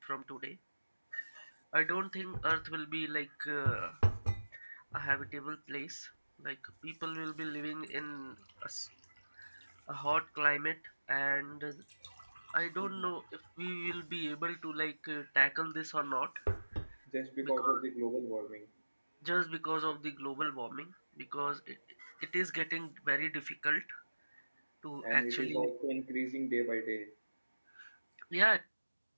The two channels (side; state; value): both; inverted; correlation -1.00